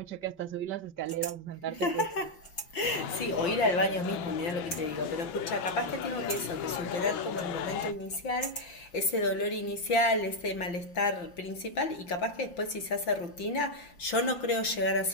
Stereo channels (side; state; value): right; late; 5.8 ms